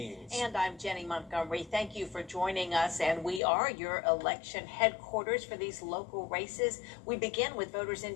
And I'm Jenny Montgomery. Thank you for joining us. And we are your election headquarters for these local races. We begin with voters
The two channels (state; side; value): drops out; right; at 3.4 s